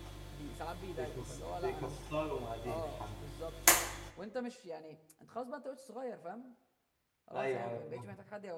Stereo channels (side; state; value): both; identical; correlation 1.00